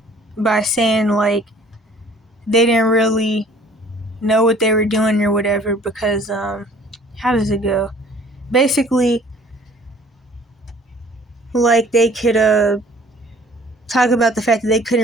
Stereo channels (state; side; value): normal; both; correlation 0.53